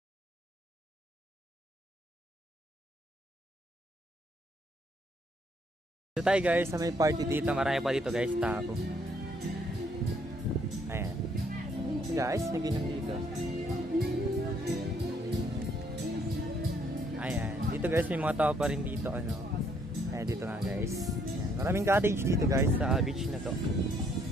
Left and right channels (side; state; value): both; normal; correlation 0.68